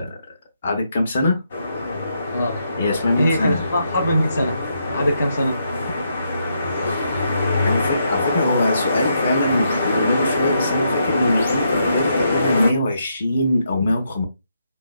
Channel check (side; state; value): both; inverted; correlation -0.79